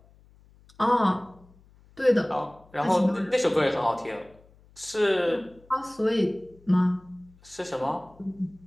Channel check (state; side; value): noise; left; hum, 28 dB below the sound